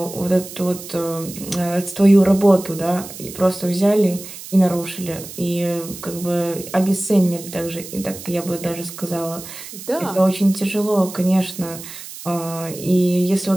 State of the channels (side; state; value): right; noise; hiss, 13 dB below the sound